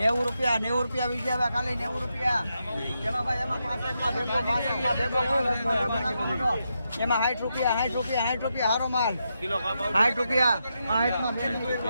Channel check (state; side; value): inverted; both; correlation -0.84